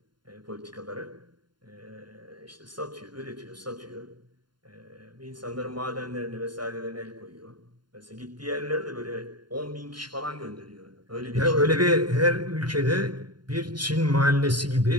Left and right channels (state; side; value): late; left; 0.71 ms